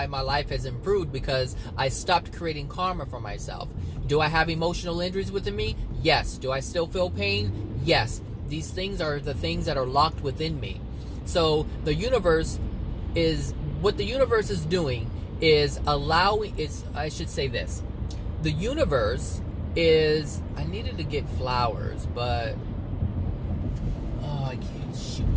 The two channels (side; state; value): both; identical; correlation 1.00